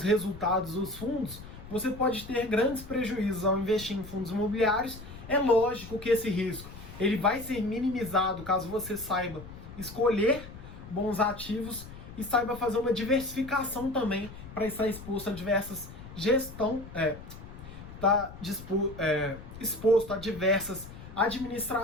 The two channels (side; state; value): left; noise; rumble, 14 dB below the sound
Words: resultados dos fundos, você pode ter grandes prejuízos ao investir em fundos imobiliários. É lógico que esse risco ele vai ser minimizado caso você saiba escolher bons ativos e saiba fazer uma diversificação também para estar exposto a diversas exposto a diversas